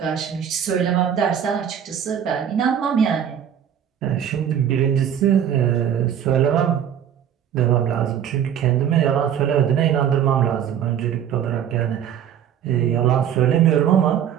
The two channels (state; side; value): quieter; left; 9.2 dB